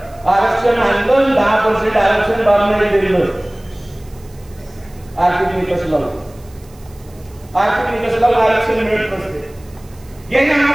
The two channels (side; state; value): right; noise; hiss, 28 dB below the sound